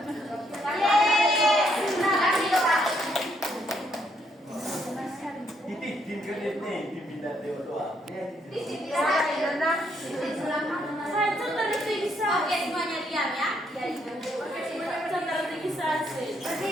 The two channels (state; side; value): normal; both; correlation 0.73